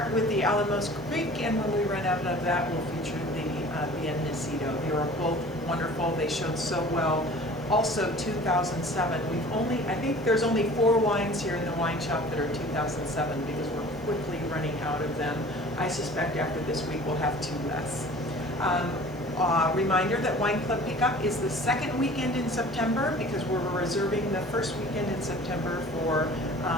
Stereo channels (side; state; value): right; noise; hiss, 28 dB below the sound